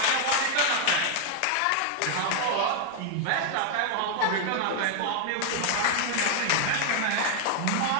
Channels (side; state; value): both; different; correlation 0.00